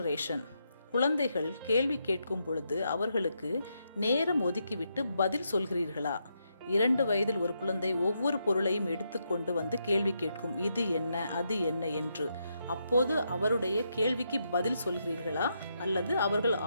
குழந்தைகள் கேள்வி கேட்கும் பொழுது அவர்களுக்கு நேரம் ஒதுக்கிவிட்டு பதில் சொல்கிறீர்களா? 2 வயதில் ஒரு குழந்தை ஒவ்வொரு பொருளையும் எடுத்துக்கொண்டு வந்து கேள்வி கேட்கும், இது என்ன, அது என்ன என்று. அப்போது அவருடைய கேள்விக்கு பதில் சொல்கிறீர்களா அல்லது அவர்கள்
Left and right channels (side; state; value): both; inverted; correlation -0.81